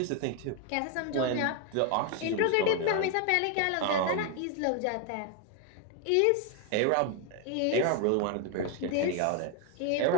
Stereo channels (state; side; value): different; both; correlation 0.01